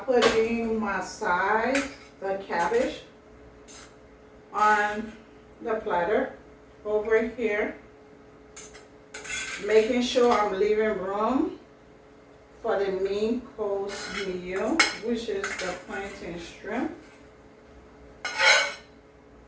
putting my side, the cabbage, on the platter over here, making sure I'm leaving room for the main course meal, which is the plantain shrimp.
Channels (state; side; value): identical; both; correlation 1.00